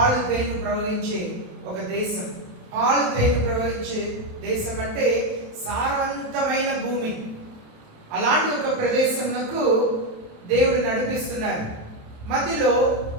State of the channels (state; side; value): late; left; 27 ms